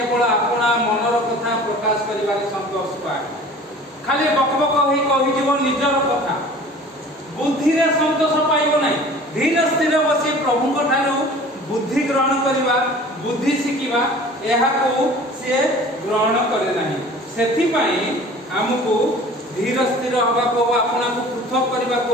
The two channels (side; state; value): both; normal; correlation 0.45